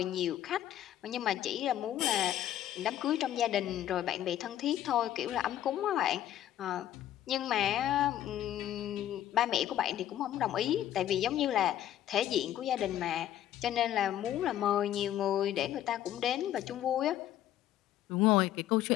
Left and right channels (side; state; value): right; quieter; 12.0 dB